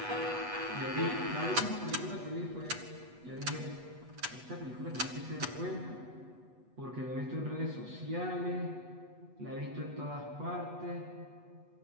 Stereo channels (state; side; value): late; left; 8.1 ms